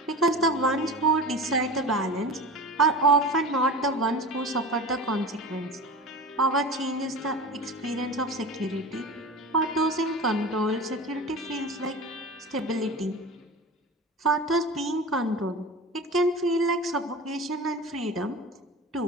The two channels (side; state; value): both; normal; correlation 0.32